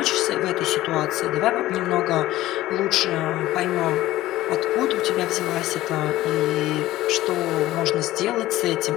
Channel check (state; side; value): quieter; right; 15.9 dB